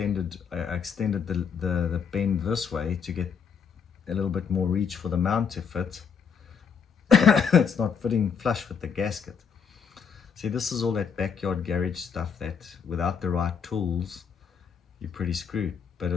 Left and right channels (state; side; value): quieter; right; 6.7 dB